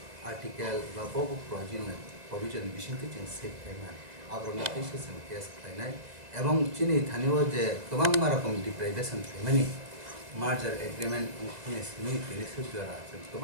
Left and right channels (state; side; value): late; left; 2.0 ms